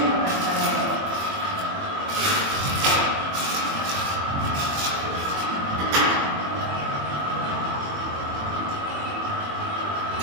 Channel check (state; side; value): late; left; 21 ms